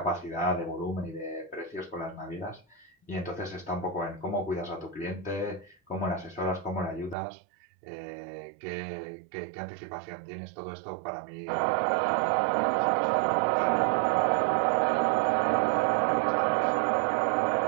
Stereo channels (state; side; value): drops out; left; at 7.2 s